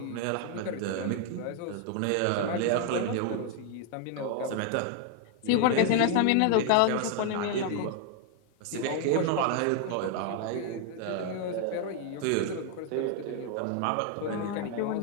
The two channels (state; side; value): different; both; correlation 0.00